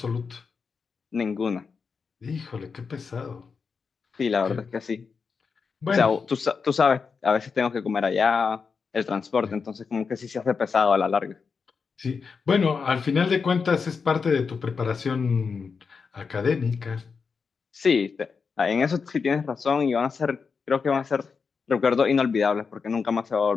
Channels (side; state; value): right; quieter; 5.4 dB